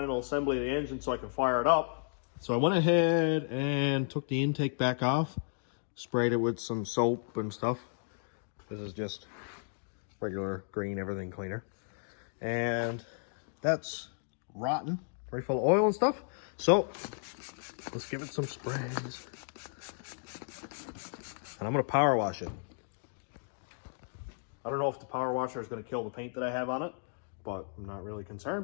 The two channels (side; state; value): right; silent; digital silence